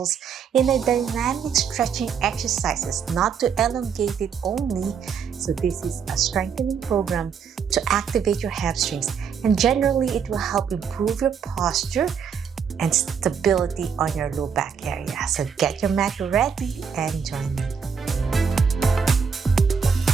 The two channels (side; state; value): left; quieter; 6.7 dB